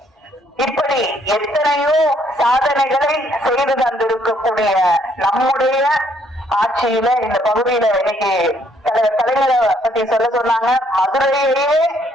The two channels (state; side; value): normal; both; correlation 0.67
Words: இப்படி எத்தனையோ சாதனைகளை செய்து தந்திருக்கக்கூடிய நம்முடைய ஆட்சியில இந்த பகுதியில இன்னைக்கு கலைஞரை பத்தி சொன்னாங்க. மதுரையிலேயே